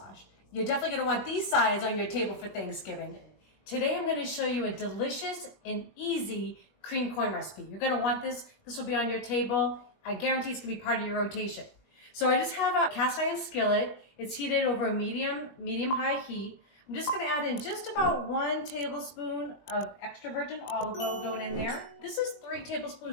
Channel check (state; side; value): late; right; 20 ms